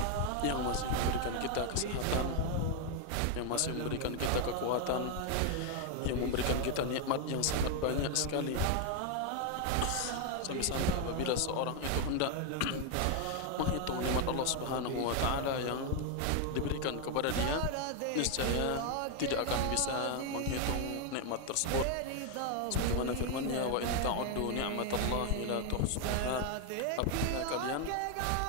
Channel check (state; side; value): different; both; correlation 0.01